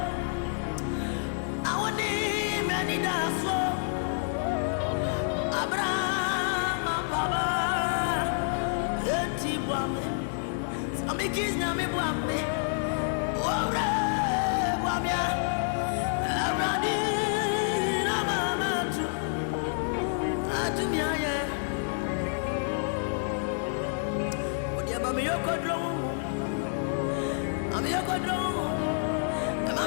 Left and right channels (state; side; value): silent; right; 59 dB below the other